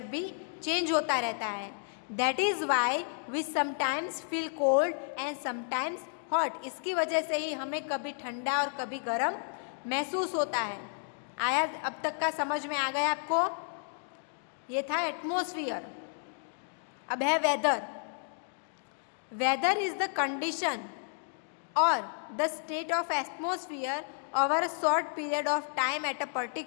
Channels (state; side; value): silent; right; digital silence